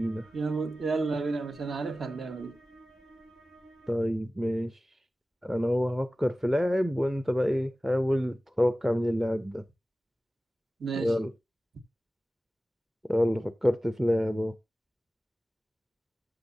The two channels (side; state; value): both; normal; correlation 0.96